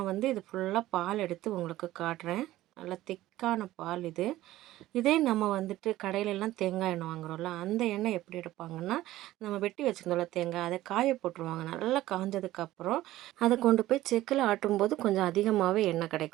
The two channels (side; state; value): left; quieter; 15.5 dB